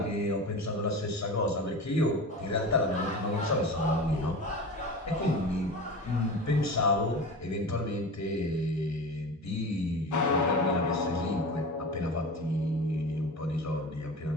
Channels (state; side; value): normal; both; correlation 0.31